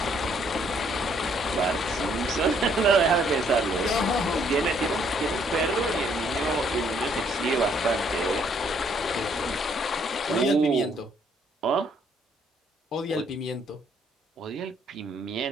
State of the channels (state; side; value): normal; both; correlation 0.66